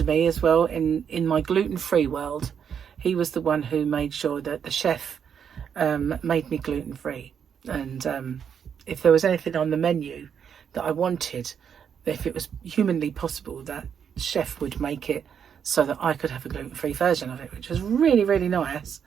me as well in my gluten-free world. He was the one who made sure that the chef made me gluten-free, and if there was anything on the menu that I wanted, if it was humanly possible, that chef would make it so that I could have a gluten-free version of it, which was really, really nice.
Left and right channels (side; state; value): left; quieter; 7.7 dB